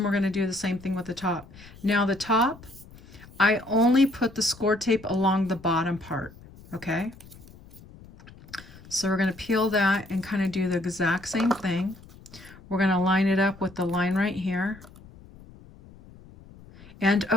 we're going to do the same thing with the top. Now the top, I only put the score tape along the bottom part, okay? So we're going to peel that and kind of do the exact same thing. We're going to line it up with the line right here. And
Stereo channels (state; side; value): noise; left; rumble, 21 dB below the sound